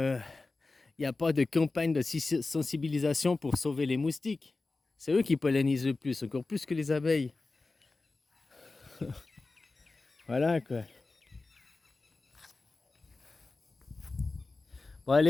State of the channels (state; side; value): quieter; right; 3.5 dB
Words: n'y a pas de campagne de sensibilisation pour sauver les moustiques. C'est eux qui pollinisent le plus, encore plus que les abeilles. Voilà quoi. Bon